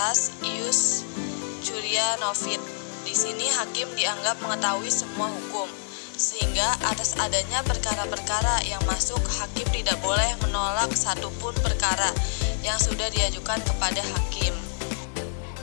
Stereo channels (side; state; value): right; silent; 58 dB below the other